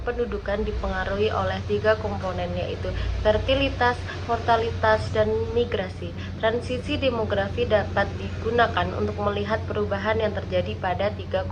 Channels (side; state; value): both; identical; correlation 1.00